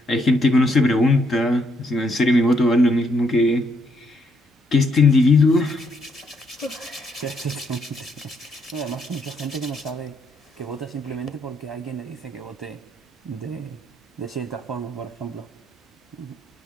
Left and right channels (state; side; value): normal; both; correlation 0.73